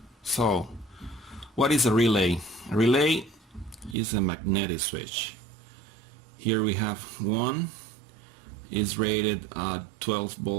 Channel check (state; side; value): drops out; left; at 4.0 s